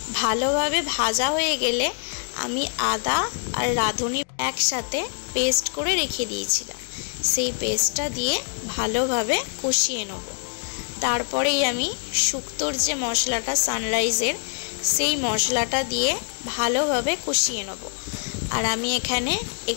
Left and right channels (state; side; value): silent; right; 58 dB below the other